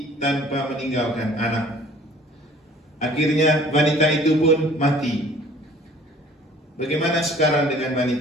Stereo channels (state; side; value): normal; both; correlation 0.52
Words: tanpa meninggalkan anak. Akhirnya wanita itu pun mati. Bagaimana sekarang dengan